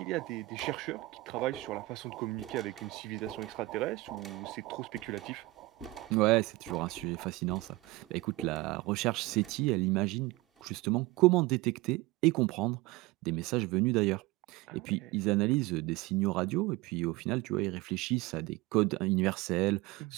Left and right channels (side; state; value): left; quieter; 20.8 dB